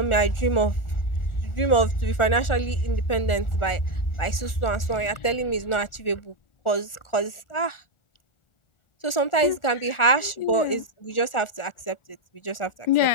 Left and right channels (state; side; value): late; right; 1.4 ms